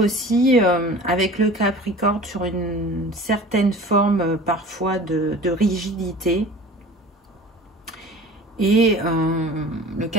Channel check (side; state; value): both; normal; correlation 0.41